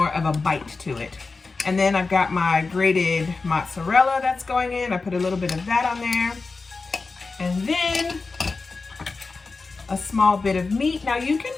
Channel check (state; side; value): quieter; right; 4.1 dB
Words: of a bite to it. And then I've got my grated mozzarella that's going in. I put a little bit of that on there. And then a small bit of meat. Now you can